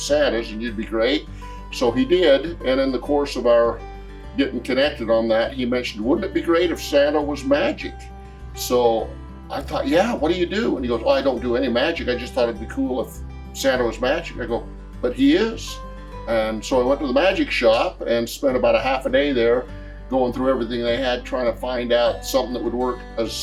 and you'd be great." So he did, and in the course of our getting connected on that, he mentioned, "Wouldn't it be great if Santa was magic?" So I thought, "Yeah, what do you do?" And he goes, "Well, I don't do any magic. I just thought it'd be cool if Santa was magic." I go, "But he is." And so I went to the magic shop and spent about a half a day there going through everything they had, trying to find out something that would work as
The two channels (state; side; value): identical; both; correlation 1.00